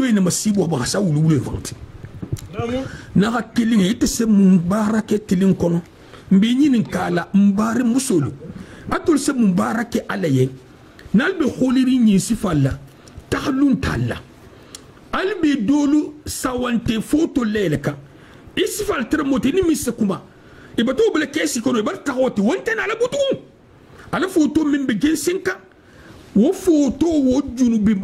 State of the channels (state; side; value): identical; both; correlation 1.00